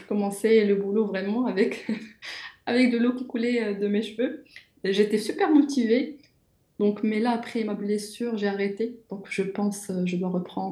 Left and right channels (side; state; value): both; identical; correlation 1.00